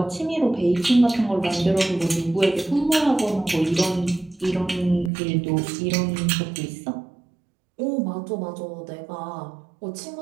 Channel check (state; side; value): drops out; left; at 5.1 s